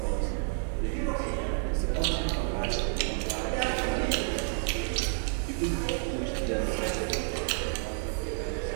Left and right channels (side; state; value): left; silent; 58 dB below the other